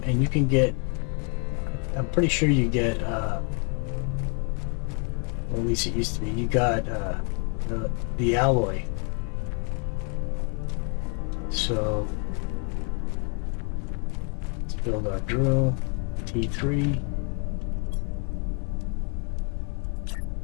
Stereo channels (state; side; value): quieter; right; 38.0 dB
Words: and you can get, I'm pretty sure you get, well, at least it used to be, you got the alloy. So, let's build our drill, T3.